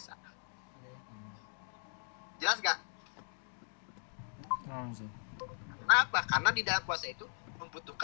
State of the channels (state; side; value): silent; right; 52 dB below the other